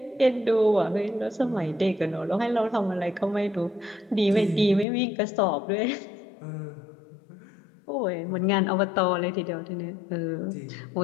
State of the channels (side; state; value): right; drops out; at 4.9 s